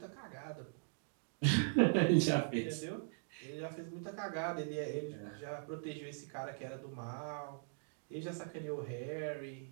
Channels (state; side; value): silent; left; digital silence